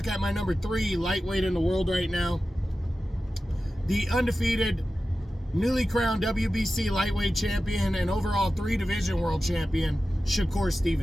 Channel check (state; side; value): normal; both; correlation 0.94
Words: at my number 3 lightweight in the world right now, the undefeated, newly crowned WBC lightweight champion and overall 3-division world champion, Shakur